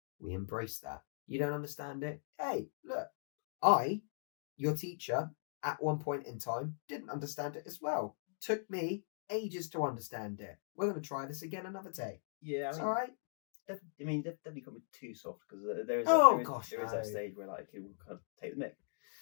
We embrace that. You don't understand it? Hey, look, your teacher, at one point in time, didn't understand it as well. Took me ages to understand it. We're going to try this again another day. Yeah, it's all right. Definitely can't be too soft, because there is that stage where like it will kind of take the mick.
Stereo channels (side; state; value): right; silent; digital silence